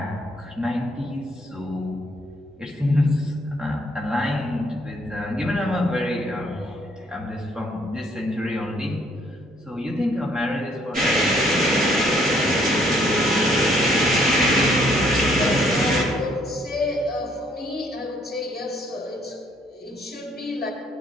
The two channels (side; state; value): both; normal; correlation 0.67